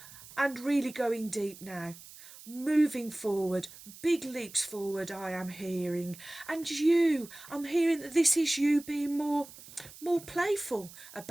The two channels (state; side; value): noise; right; hiss, 18 dB below the sound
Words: and really going deep now. Moving forward, big leaps forward I am hearing. And you, I'm hearing that this is you being more playful